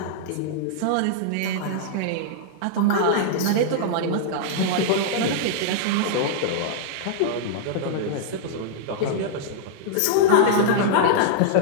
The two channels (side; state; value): both; different; correlation -0.01